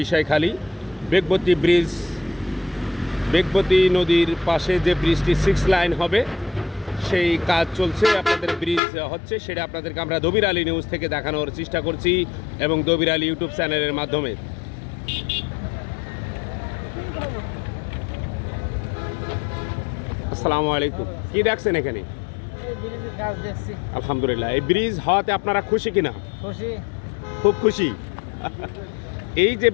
বিষয়খালী বেগবতী নদীর পাশে যে ব্রিজটি 6 লাইন হবে সেই কাজ চলছে, আপনাদের ব্রিজ হচ্ছে, সেটা আপনাদেরকে আমরা দবির আলী নিউজ থেকে দেখানোর চেষ্টা করছি এবং দবির আলী ইউটিউব চ্যানেলের মাধ্যমে। আসসালামু আলাইকুম। কি দেখছেন এখানে? আলহামদুলিল্লাহ। এই ব্রিজ হওয়াতে আপনারা খুশি কিনা? খুশি, খুব খুশি। এই যে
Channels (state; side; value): drops out; right; at 8.8 s